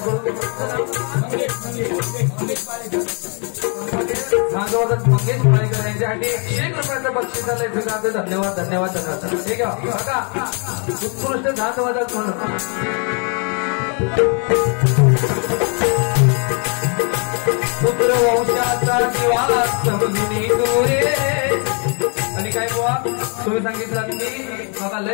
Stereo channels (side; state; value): right; quieter; 37.8 dB